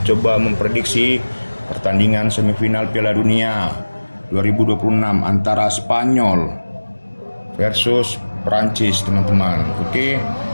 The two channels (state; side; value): inverted; both; correlation -1.00